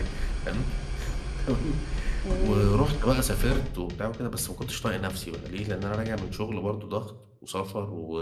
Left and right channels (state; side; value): identical; both; correlation 1.00